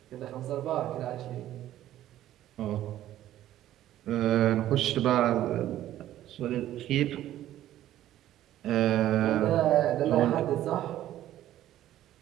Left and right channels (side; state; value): left; quieter; 13.1 dB